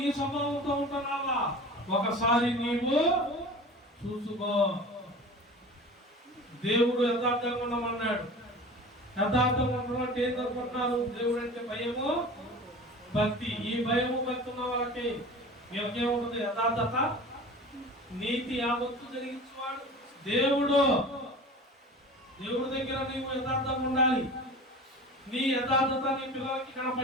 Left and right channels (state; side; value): normal; both; correlation 0.37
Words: స్వభావంతో ఉంటున్నావా? ఒకసారి నీవు చూసుకో. దేవుడు యథార్థంగా ఉండమన్నాడు. యథార్థంగా ఉండమంటే ఏం అనుకుంటున్నారు? దేవుడు అంటే భయము, భక్తి. ఈ భయము భక్తి ఉన్న వాళ్ళకి వీళ్ళకేముంటుంది? యథార్థత, నీతి, యావత్తు జరిగించేవాడు దేవుడు. దేవుడి దగ్గర నీవు యథార్థంగా ఉండాలి. నీ యథార్థత నీ పిల్లలకి